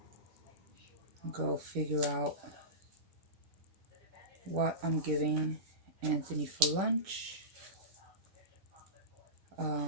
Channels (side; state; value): left; late; 10 ms